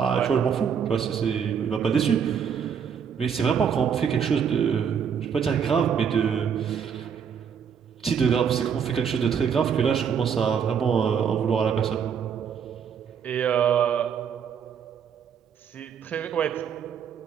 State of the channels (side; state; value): left; quieter; 7.4 dB